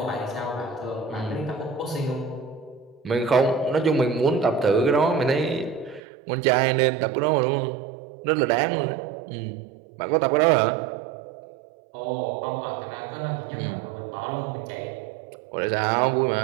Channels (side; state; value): left; drops out; at 6.0 s